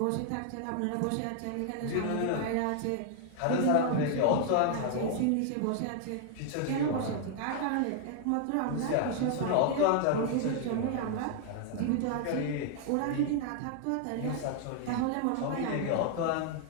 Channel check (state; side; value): different; both; correlation 0.00